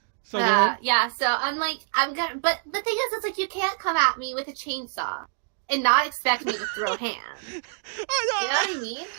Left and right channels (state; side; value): silent; left; digital silence